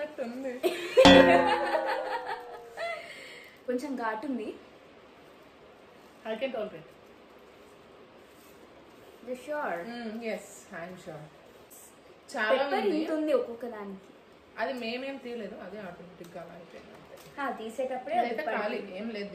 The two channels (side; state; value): both; identical; correlation 1.00